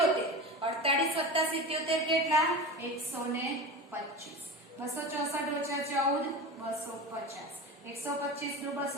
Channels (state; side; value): normal; both; correlation 0.28